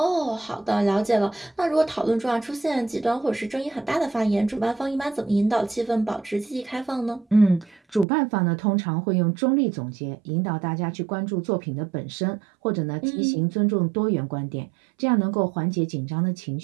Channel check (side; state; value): left; drops out; at 8.1 s